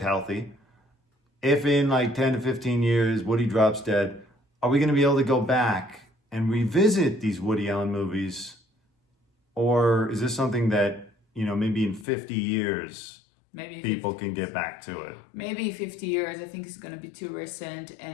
healthy. If in like 10 to 15 years, Woody drops dead, are we going to be able to go back and revisit these Woody Allen movies? Or is this something that, you know, maybe in 50 years, people can get back to it? Maybe 50 years. I think it's going to be too recent.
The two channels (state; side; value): drops out; right; at 12.1 s